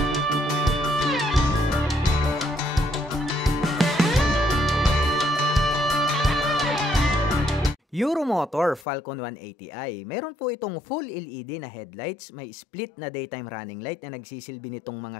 Euromotor Falcon 180i. Meron po itong full LED na headlights, may split na daytime running light na nagsisilbi nitong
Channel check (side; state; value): right; drops out; at 8.8 s